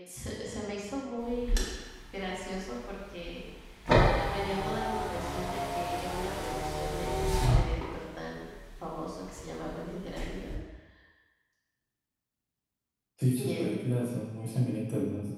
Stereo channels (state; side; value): identical; both; correlation 1.00